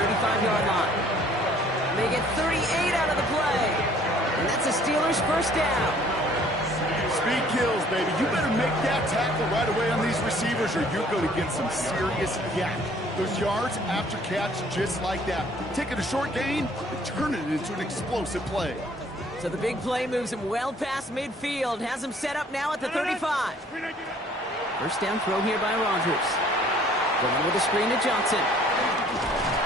line. They get 38 out of the play. And that's a Steelers first down. Speed kills, baby. You better make that tackle right away on these receivers or you're going to get some serious yak. Those yards after catch just like that. Taking a short gain and turning it into an explosive play. So the big play moves him well past midfield. Has him set up now at the 35. First down throw here by Rodgers. Going with a screen to Johnson.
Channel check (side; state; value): both; normal; correlation 0.57